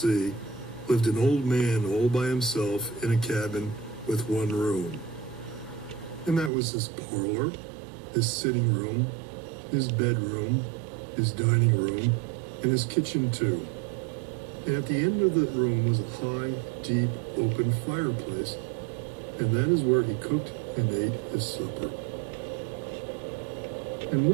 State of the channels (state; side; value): drops out; left; at 6.5 s